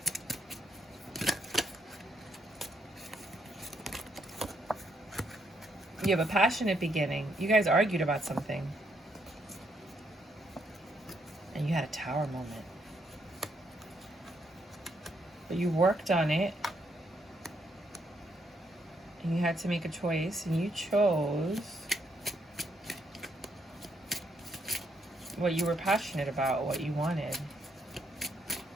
You have a passionate beginning. You guys argued about something. And you had a tower moment. But you worked on it. And you had to make a choice. And you chose what you were passionate about, what you wanted.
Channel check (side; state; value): both; normal; correlation 0.74